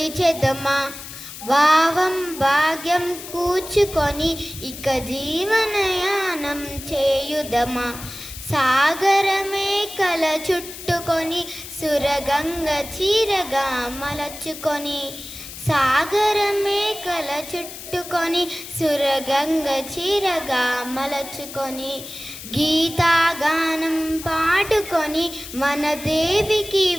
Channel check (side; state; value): left; noise; hiss, 12 dB below the sound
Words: భావం భాగ్యం కూర్చుకొని ఇక జీవనయానం చేయుదమా. సాగరమే కల చుట్టుకొని సురగంగ చీరగా మలచుకొని, సాగరమే కల చుట్టుకొని సురగంగ చీరగా మలచుకొని, గీతాగానం పాడుకొని మన దేవికి